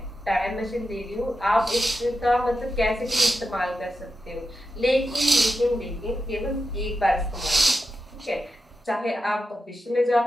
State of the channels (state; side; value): normal; both; correlation 0.89